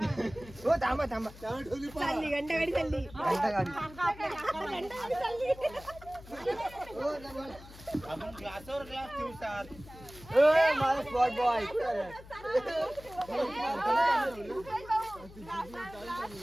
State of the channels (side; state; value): left; noise; hum, 18 dB below the sound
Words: हो थांबा थांबा. चालली घंटागाडी चालली. घंटागाडी. घंटागाडी चालली. मला स्पॉट बॉय.